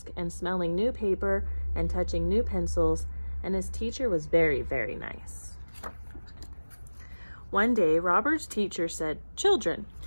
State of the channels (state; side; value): inverted; both; correlation -1.00